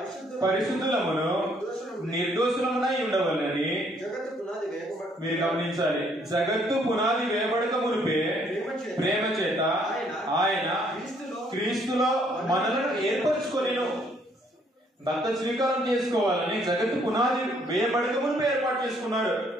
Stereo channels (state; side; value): normal; both; correlation 0.66